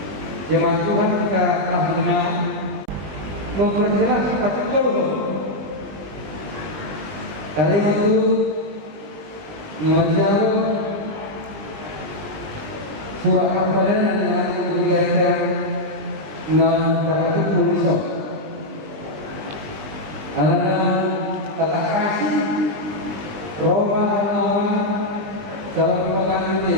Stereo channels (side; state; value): left; late; 20 ms